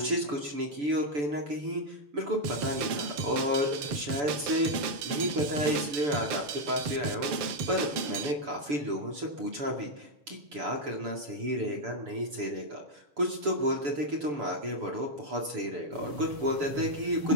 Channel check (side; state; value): left; late; 6.9 ms